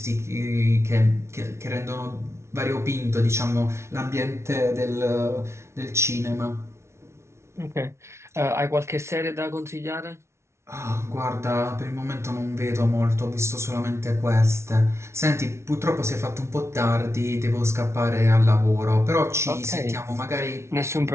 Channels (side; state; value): left; late; 0.13 ms